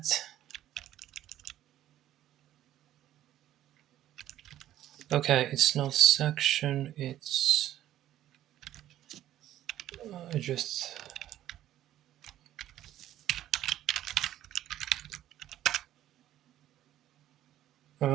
Okay, it's not section, it's just...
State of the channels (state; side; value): quieter; left; 12.8 dB